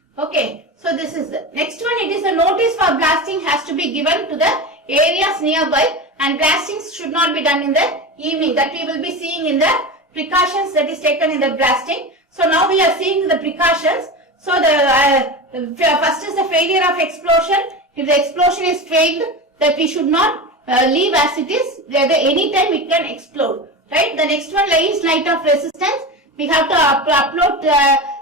Okay. So this is the next one. It is a notice for blasting has to be given to the areas nearby, and blastings should not be done in the evening. That we will be seeing in the precautions that is taken in the blasting. So now we are seeing the precautions. So the first is the failure of explosion. If the explosion is failed, that we should not leave as it is. Any time it can explode. Right. The next one is light of resistance. We have to upload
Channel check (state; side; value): normal; both; correlation 0.25